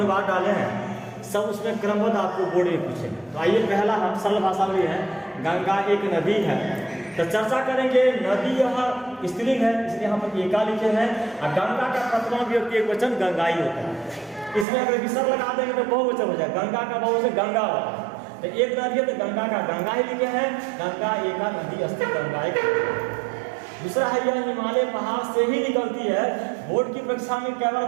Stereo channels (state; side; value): drops out; left; at 14.7 s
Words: डाले हैं सब उसमें क्रमबद्ध आपको बोर्ड में पूछेंगे। तो आइए, पहला हम सरल भाषा में है, गंगा एक नदी है। तो चर्चा करेंगे, नदी यह स्त्रीलिंग है इसलिए यहाँ पर एका लिखे हैं, और गंगा का प्रथमा विभक्ति एक वचन गंगाई होता है। इसमें अगर विसर्ग लगा देंगे तो बहुवचन हो जाए, गंगा का बहुवचन गंगा होता है। तो एक नदी है तो गंगा का गंगा ही लिखे हैं, गंगा एका नदी अस्ति गंगा एक। दूसरा है यह हिमालय पहाड़ से ही निकलती है। बोर्ड की परीक्षा में कई बार